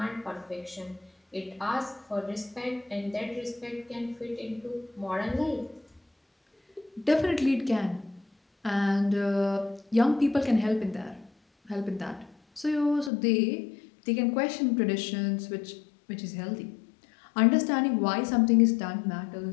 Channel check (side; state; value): right; drops out; at 13.1 s